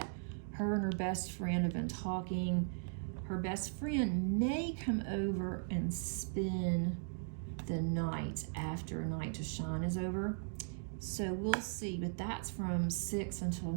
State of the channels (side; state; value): left; silent; digital silence